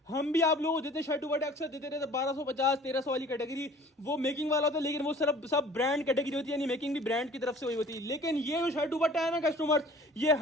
हम भी आप लोगों को देते शर्ट दुपट्टे अक्सर देते रहते 1250 1300 वाली कैटेगरी, वो मेकिंग वाला होता है, लेकिन वो सब ब्रांड कैटेगरी होती है, यानी मेकिंग भी ब्रांड की तरफ से हुई होती है। लेकिन ये जो शर्ट दुपट्टा है ना कस्टमर, ये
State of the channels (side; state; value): both; normal; correlation 0.48